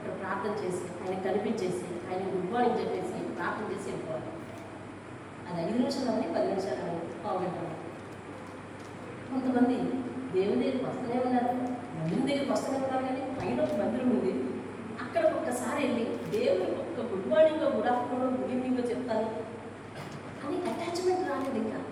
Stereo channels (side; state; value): both; identical; correlation 1.00